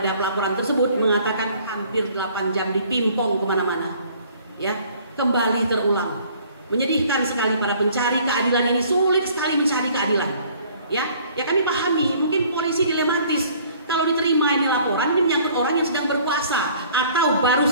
pelaporan tersebut, mengatakan hampir 8 jam dipimpong kemana-mana, ya, kembali terulang. Menyedihkan sekali, para pencari keadilan ini sulit sekali mencari keadilan, ya. Ya kami pahami, mungkin polisi dilematis. Kalau diterima ini laporan, ini menyangkut orang yang sedang berkuasa atau baru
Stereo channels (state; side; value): inverted; both; correlation -0.55